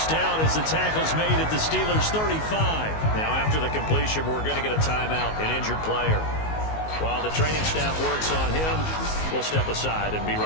down as the tackle's made at the Steelers' 35. Now after the completion, we're going to get a timeout, an injured player. While the training staff works on him, we'll step aside and be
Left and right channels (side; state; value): right; late; 19 ms